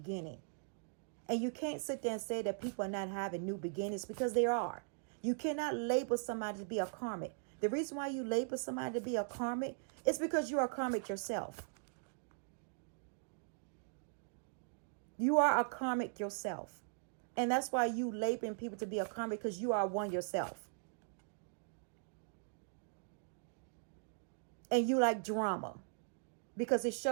And you can't sit there and say that people are not having new beginnings, because they are. You cannot label somebody to be a karmic. The reason why you label somebody to be a karmic is because you are karmic yourself. You are a karmic yourself. And that's why you labeling people to be a karmic, because you are one yourself. And you like drama, because it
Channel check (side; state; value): left; silent; digital silence